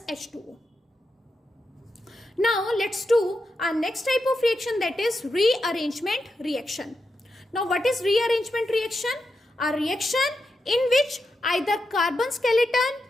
H2O. Now let's do our next type of reaction, that is rearrangement reaction. Now what is rearrangement reaction? A reaction in which either carbon skeleton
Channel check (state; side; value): normal; both; correlation 0.87